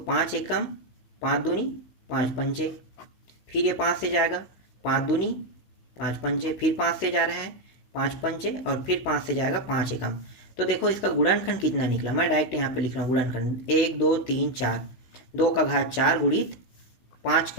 5 एकम 5 दूनी 5 पंचे, फिर ये 5 से जाएगा 5 दूनी 5 पंचे, फिर 5 से जा रहा है 5 पंचे, और फिर 5 से जाएगा 5 एकम। तो देखो इसका गुणनखंड कितना निकला, मैं डायरेक्ट यहाँ पे लिख रहा हूँ गुणनखंड, 1 2 3 4, 2 का घात 4 गुणित 5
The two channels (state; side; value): late; right; 15 ms